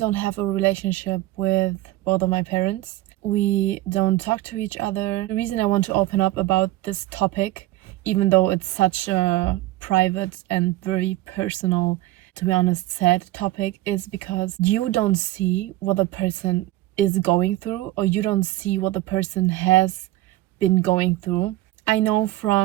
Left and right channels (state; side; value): quieter; left; 16.6 dB